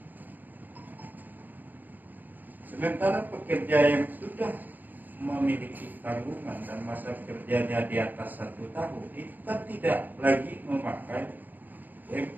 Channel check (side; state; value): left; late; 0.085 ms